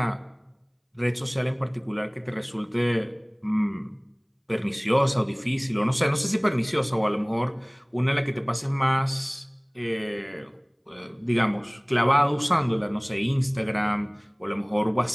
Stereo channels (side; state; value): both; identical; correlation 1.00